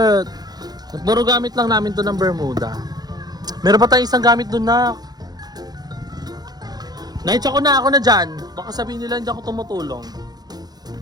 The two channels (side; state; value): left; late; 0.19 ms